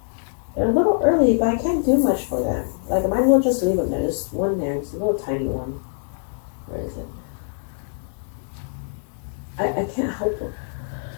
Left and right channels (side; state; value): right; silent; digital silence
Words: They're a little early, but I can't do much for them. Like, I might as well just leave them there. There's one there. It's a little tiny one. Where is it? I can't help it.